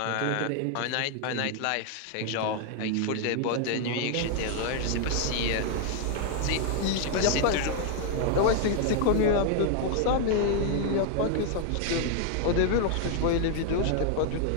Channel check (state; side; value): different; both; correlation 0.00